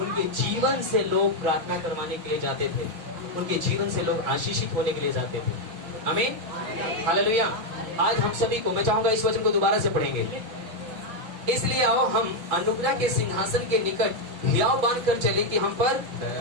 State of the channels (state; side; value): late; left; 6.0 ms